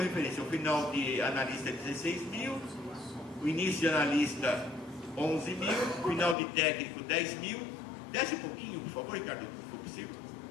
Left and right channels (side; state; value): right; drops out; at 6.4 s